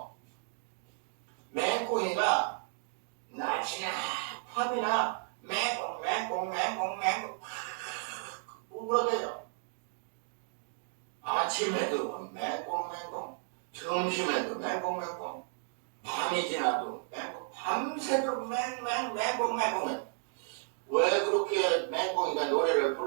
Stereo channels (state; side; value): silent; left; 55 dB below the other